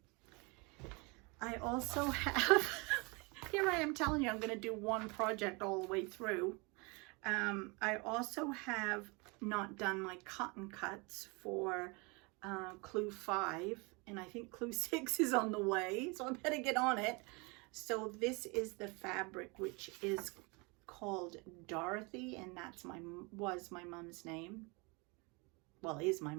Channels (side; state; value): left; quieter; 28.8 dB